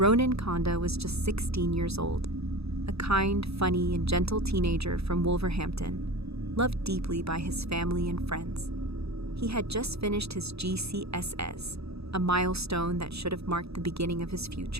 Kanda was just 16 years old, a kind, funny, and gentle teenager from Wolverhampton, loved deeply by his family and friends. He had just finished his GCSEs, a milestone that should have marked the beginning of his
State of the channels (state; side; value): late; left; 0.78 ms